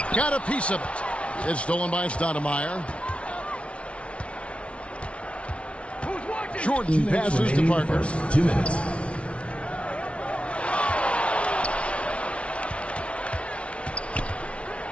Got a piece of it. It's stolen by Stoudemire. Jordan passes to Parker. 2 minutes.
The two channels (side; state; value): right; late; 0.061 ms